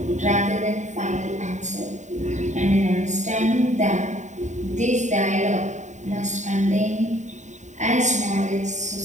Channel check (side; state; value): left; late; 0.34 ms